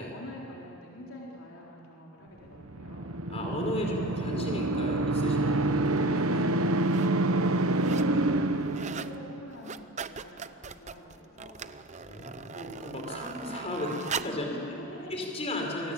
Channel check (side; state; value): both; normal; correlation 0.34